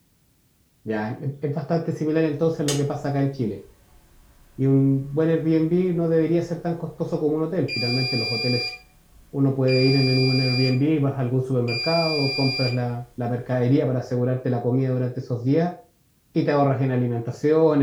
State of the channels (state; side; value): identical; both; correlation 1.00